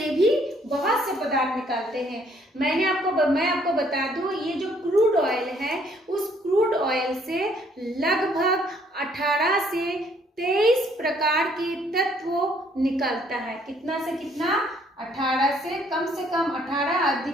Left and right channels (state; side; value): normal; both; correlation 0.64